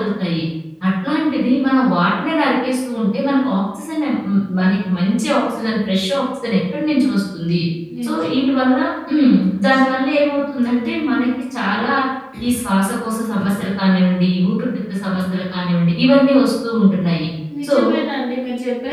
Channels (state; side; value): identical; both; correlation 1.00